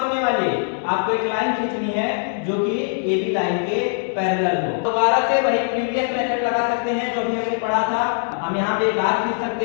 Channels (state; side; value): silent; right; 62 dB below the other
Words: होने वाली आपको एक लाइन खींचनी है जो कि AB लाइन के पैरेलल हो। दोबारा से वही प्रीवियस मेथड लगा सकते हैं जो भी हमने पढ़ा था। हम यहाँ पे एक आर्क खींच